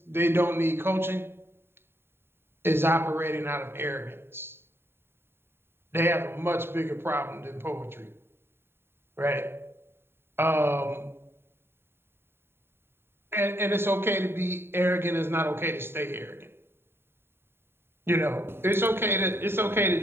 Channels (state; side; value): late; left; 0.11 ms